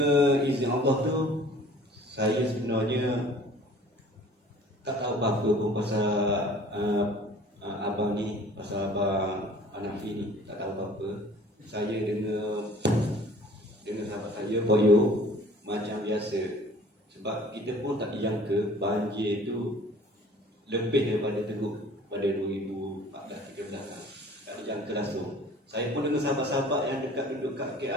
izin Allah tu, saya sebenarnya tak tahu apa-apa pun pasal abang ni, pasal abang Hanafi ni, tak tahu apa-apa. Saya dengan sahabat saya boyo macam biasa. Sebab kita pun tak dijangka banjir tu lebih daripada teruk pada 2014-13 kan. Tak dijangka langsung. Saya pun dengan sahabat-sahabat yang duduk kat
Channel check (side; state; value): both; normal; correlation 0.49